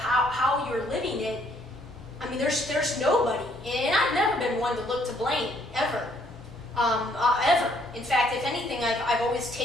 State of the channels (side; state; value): right; noise; hum, 25 dB below the sound